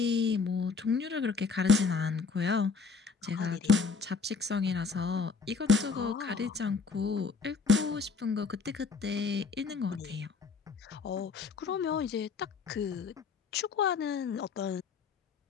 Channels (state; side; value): quieter; right; 4.9 dB